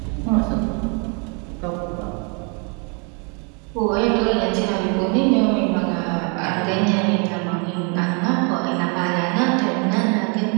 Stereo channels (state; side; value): quieter; left; 35.7 dB